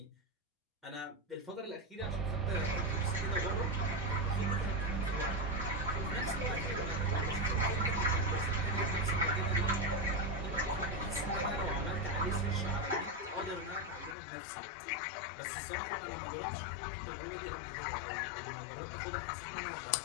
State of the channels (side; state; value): right; drops out; at 14.2 s